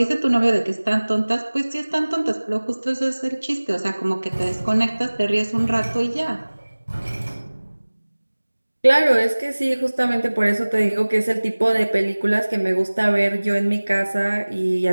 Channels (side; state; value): both; inverted; correlation -1.00